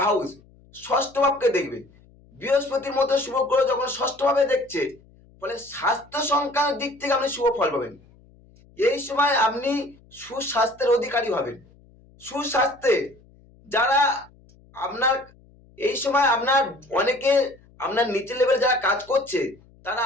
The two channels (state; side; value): noise; left; hum, 28 dB below the sound